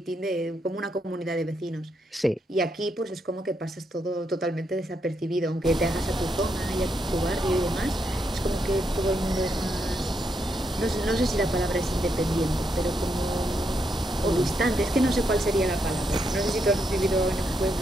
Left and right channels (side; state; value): both; normal; correlation 0.80